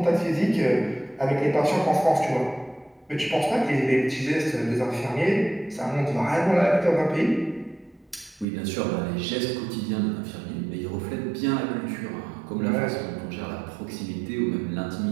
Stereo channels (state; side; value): drops out; left; at 8.5 s